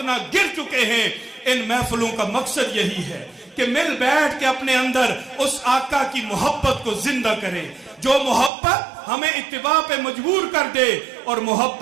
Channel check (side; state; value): left; drops out; at 8.5 s